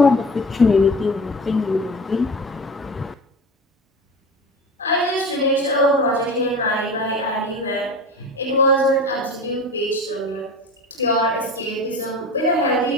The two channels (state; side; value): normal; both; correlation 0.33